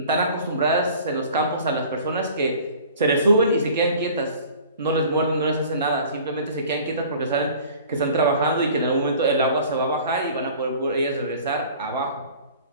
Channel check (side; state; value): both; inverted; correlation -0.47